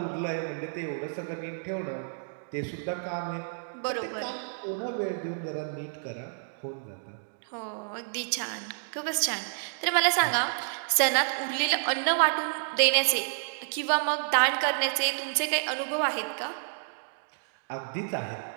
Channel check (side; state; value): left; silent; digital silence